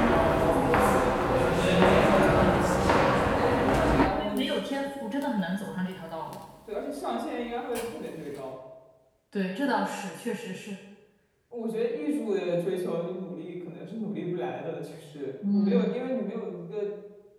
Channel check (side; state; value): both; identical; correlation 1.00